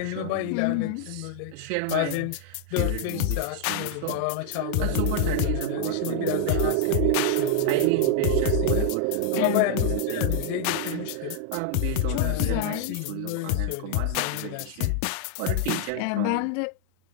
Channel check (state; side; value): different; both; correlation 0.00